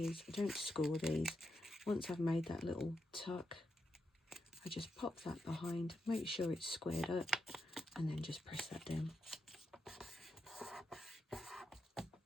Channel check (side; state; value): both; normal; correlation 0.85